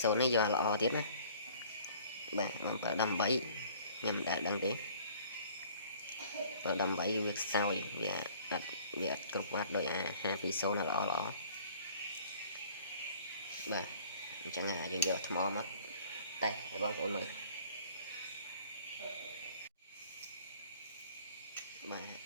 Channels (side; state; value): both; inverted; correlation -0.53